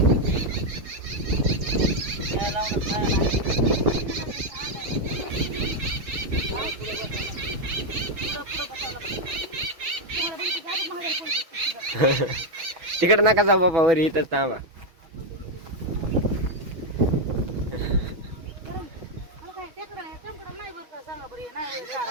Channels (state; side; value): late; left; 6.1 ms